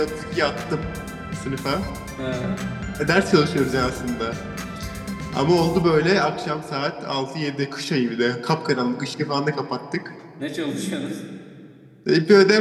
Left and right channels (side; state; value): both; identical; correlation 1.00